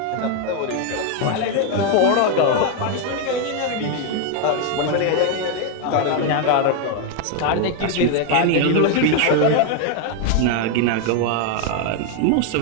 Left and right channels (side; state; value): both; different; correlation 0.01